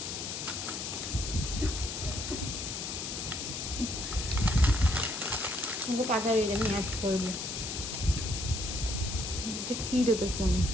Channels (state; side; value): noise; left; hiss, 5 dB below the sound